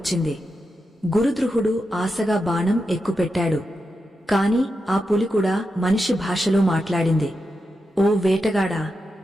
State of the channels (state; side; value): normal; both; correlation 0.88